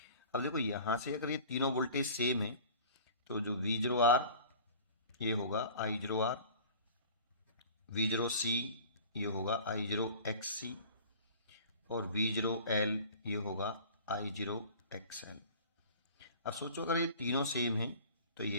अब देखो यहाँ से अगर ये तीनों वोल्टेज सेम है, तो जो V0R ये होगा I0R, V0C ये होगा I0XC, और V0L ये होगा I0XL. अब सोचो अगर ये तीनों सेम हैं तो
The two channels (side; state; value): both; inverted; correlation -0.43